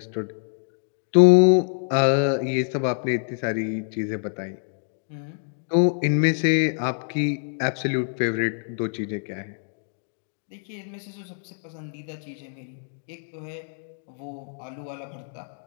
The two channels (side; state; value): right; silent; 61 dB below the other